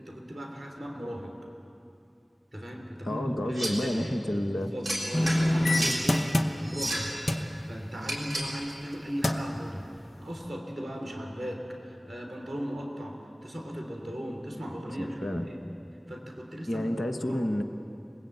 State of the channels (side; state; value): both; normal; correlation 0.97